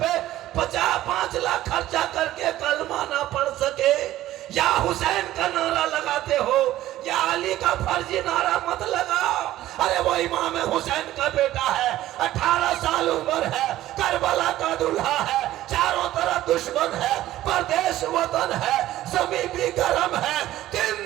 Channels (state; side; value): quieter; left; 14.5 dB